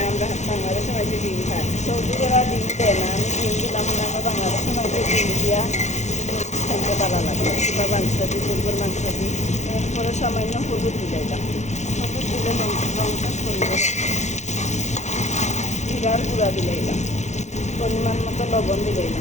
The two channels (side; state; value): right; late; 0.33 ms